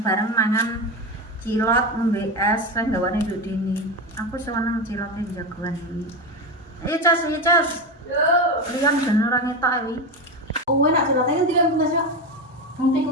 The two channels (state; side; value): normal; both; correlation 0.18